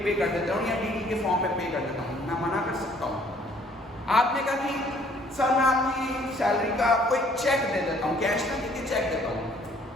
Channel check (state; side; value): normal; both; correlation 0.60